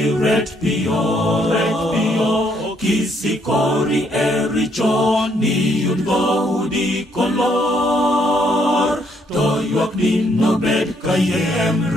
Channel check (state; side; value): normal; both; correlation 0.70